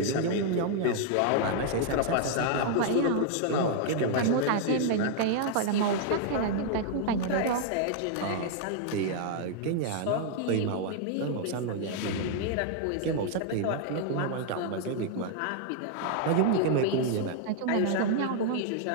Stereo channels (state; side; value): different; both; correlation 0.00